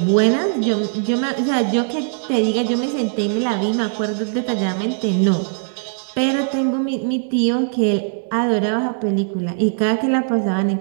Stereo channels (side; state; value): left; silent; digital silence